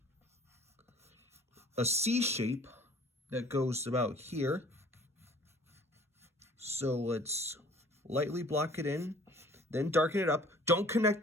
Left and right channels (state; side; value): normal; both; correlation 0.51